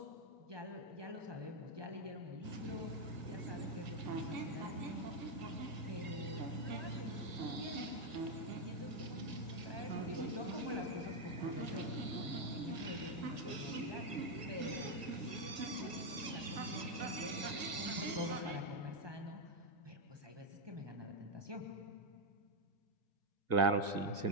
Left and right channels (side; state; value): left; late; 1.7 ms